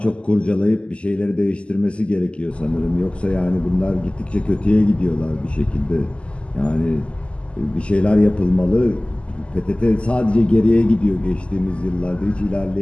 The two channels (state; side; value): late; right; 0.054 ms